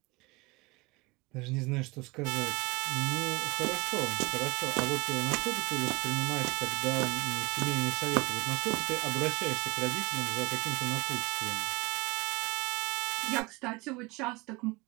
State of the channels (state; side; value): quieter; left; 25.5 dB